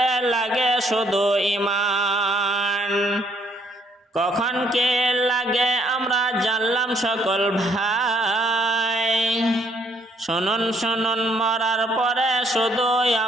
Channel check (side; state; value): both; normal; correlation 0.67